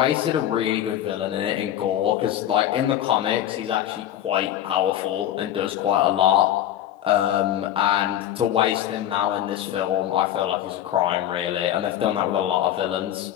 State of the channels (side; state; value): right; quieter; 11.7 dB